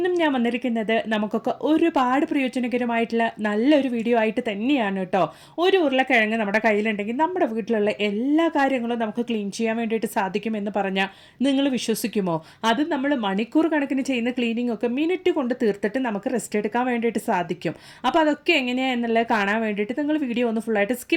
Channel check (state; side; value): identical; both; correlation 1.00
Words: ഞാൻ വന്നിരിക്കുന്നത് നമുക്കൊക്കെ ഒരുപാട് പ്രയോജനകരമായിട്ടുള്ള നല്ലൊരു വീഡിയോ ആയിട്ട് തന്നെയാണ് കേട്ടോ. ഒരു ഉരുളക്കിഴങ്ങ് നമ്മുടെ കയ്യിലുണ്ടെങ്കിൽ നമ്മുടെ വീട്ടിലുള്ള എല്ലാ കാര്യങ്ങളും നമുക്ക് ക്ലീൻ ചെയ്യാൻ വേണ്ടിയിട്ട് സാധിക്കുമെന്ന് പറഞ്ഞാൽ നിങ്ങൾ വിശ്വസിക്കുമോ? അത് നമ്മൾ മണിക്കൂർ കണക്കിന് ചെയ്യുന്ന ക്ലീനിങ് ഒക്കെ മിനിറ്റ് കൊണ്ട് തീർത്തിട്ട് നമുക്ക് റെസ്റ്റ് എടുക്കാൻ വേണ്ടിയിട്ട് സാധിക്കും. അപ്പോൾ അതൊക്കെ എങ്ങനെയാണ് എന്നുള്ളത് കാണാൻ വേണ്ടിയിട്ട് നിങ്ങൾ വീഡിയോ ഒന്ന് ഫുള്ളായിട്ട്